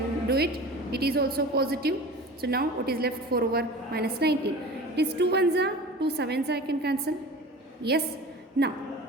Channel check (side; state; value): both; normal; correlation 0.37